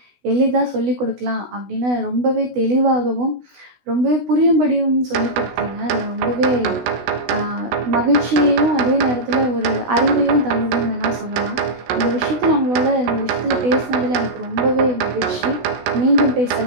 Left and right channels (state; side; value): late; left; 16 ms